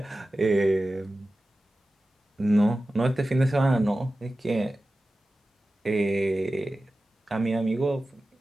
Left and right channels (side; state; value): both; normal; correlation 0.95